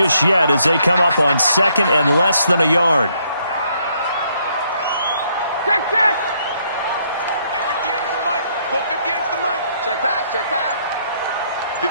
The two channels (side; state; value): both; inverted; correlation -0.70